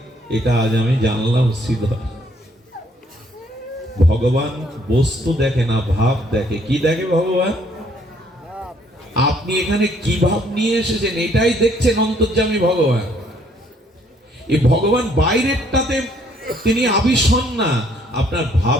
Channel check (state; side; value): normal; both; correlation 0.65